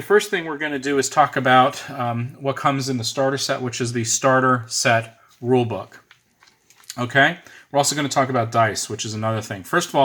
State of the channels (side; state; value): both; identical; correlation 1.00